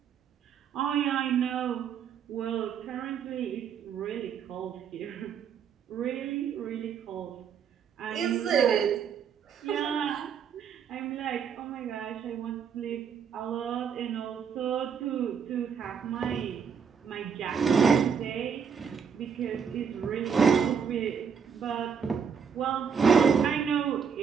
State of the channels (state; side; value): quieter; left; 6.9 dB